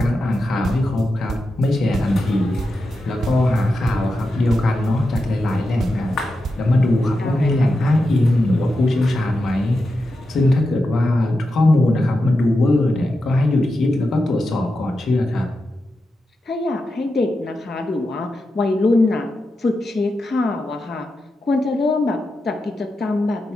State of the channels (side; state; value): both; normal; correlation 0.89